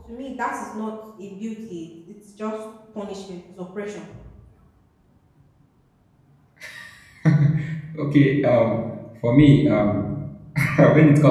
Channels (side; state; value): both; identical; correlation 1.00